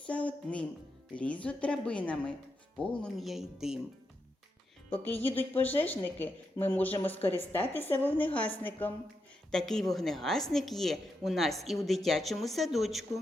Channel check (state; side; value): normal; both; correlation 0.84